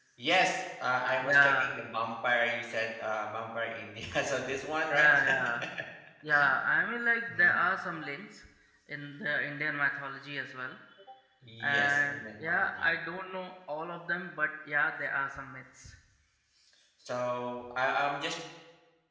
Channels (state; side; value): identical; both; correlation 1.00